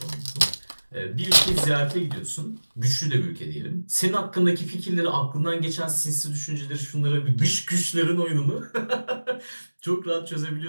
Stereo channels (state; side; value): inverted; both; correlation -1.00